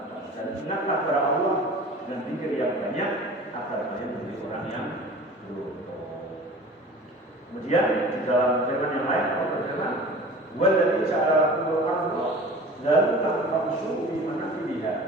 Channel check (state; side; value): normal; both; correlation 0.40